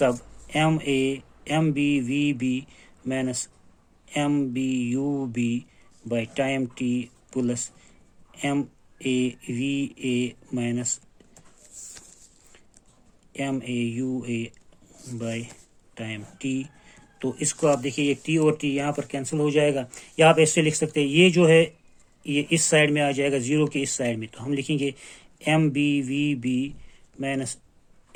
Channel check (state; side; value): identical; both; correlation 1.00